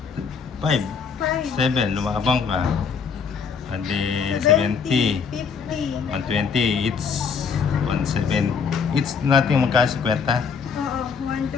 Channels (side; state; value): right; quieter; 6.0 dB